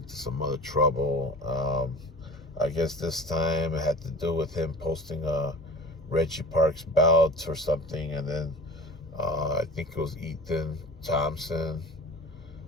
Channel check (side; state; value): both; normal; correlation 0.38